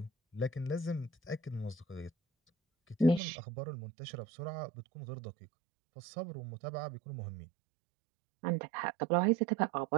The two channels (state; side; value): drops out; left; at 3.2 s